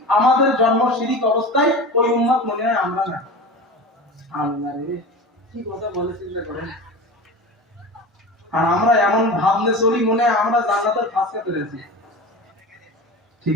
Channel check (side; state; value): both; normal; correlation 0.32